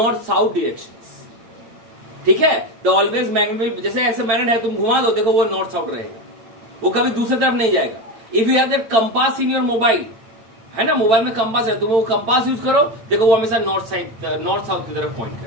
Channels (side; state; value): left; late; 8.8 ms